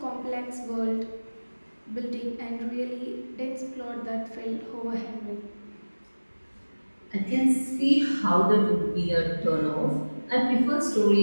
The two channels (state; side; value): inverted; both; correlation -1.00